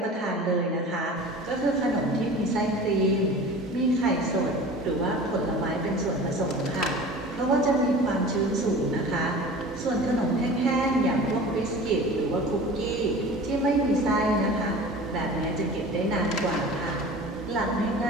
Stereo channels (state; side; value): normal; both; correlation 0.39